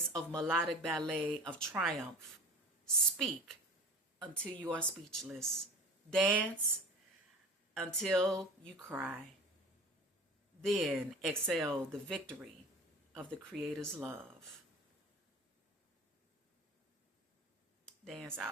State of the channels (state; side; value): normal; both; correlation 0.39